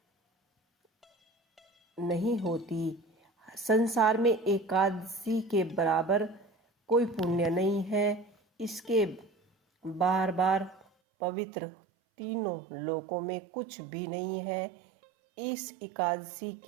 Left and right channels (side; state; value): left; drops out; at 10.9 s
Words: संसार में एकादशी के बराबर कोई पुण्य नहीं है। इसके बार बार पवित्र तीनों लोकों में कुछ भी नहीं है। इस एकादशी